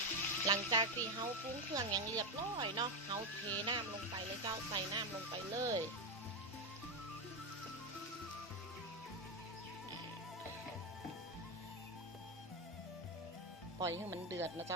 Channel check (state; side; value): normal; both; correlation 0.09